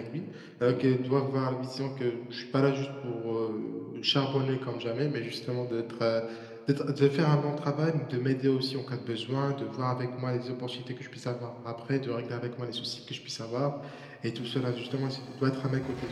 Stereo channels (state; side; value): identical; both; correlation 1.00